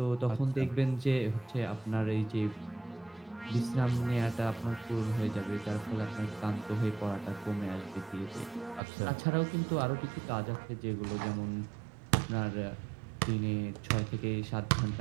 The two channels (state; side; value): drops out; left; at 8.8 s